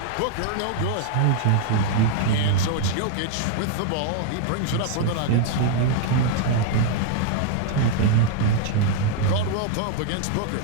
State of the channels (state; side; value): different; both; correlation 0.00